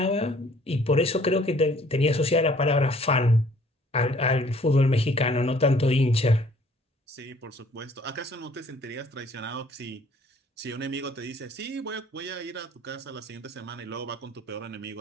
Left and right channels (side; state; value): both; normal; correlation 0.57